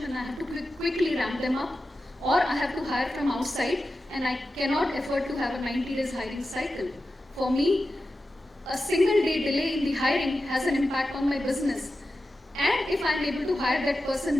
and I have to quickly ramp them up, or I have to hire from outside and I cannot afford to have a 90 days hiring cycle. For me, a single day delay in the hiring has an impact on my business. And if I'm able to hire that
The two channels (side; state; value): both; normal; correlation 0.92